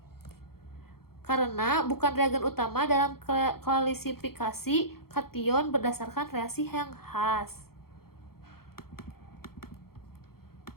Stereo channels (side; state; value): right; late; 0.94 ms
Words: Karena bukan reagen utama dalam klasifikasi kation berdasarkan reaksi yang khas.